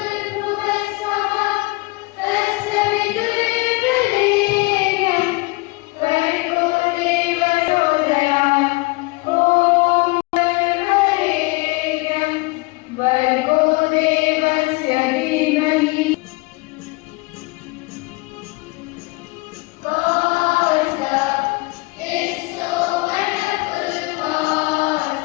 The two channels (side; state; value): right; quieter; 24.8 dB